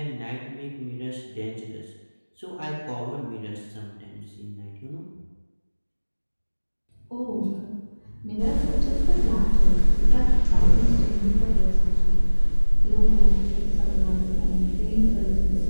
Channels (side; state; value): both; inverted; correlation -1.00